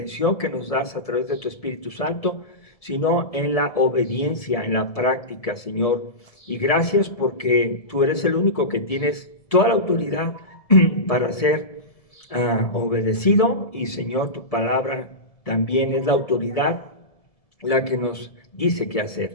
que nos das a través de tu Espíritu Santo, sino en la obediencia, en la práctica, Señor. Y gracias porque tú eres el único que tienes toda la autoridad para ser obedecido. Y, Señor, tu palabra también es la autoridad la que nos dice qué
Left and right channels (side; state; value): right; late; 1.7 ms